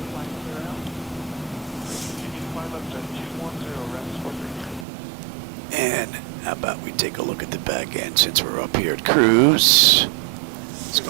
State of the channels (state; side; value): drops out; left; at 4.9 s